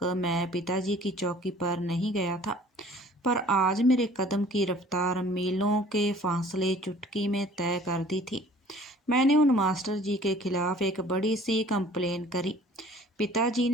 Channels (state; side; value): normal; both; correlation 0.51